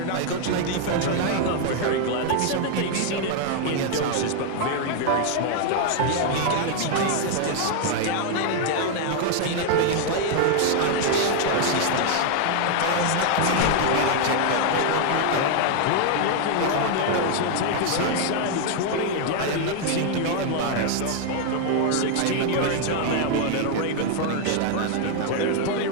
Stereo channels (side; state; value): both; different; correlation 0.00